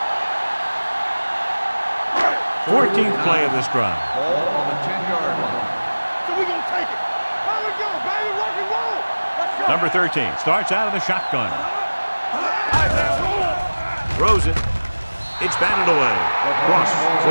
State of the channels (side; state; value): both; inverted; correlation -1.00